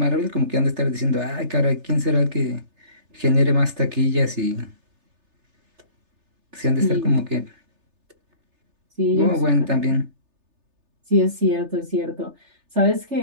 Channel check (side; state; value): left; late; 3.3 ms